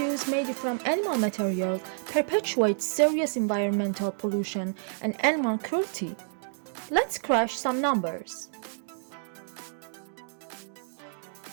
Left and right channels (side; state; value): left; silent; digital silence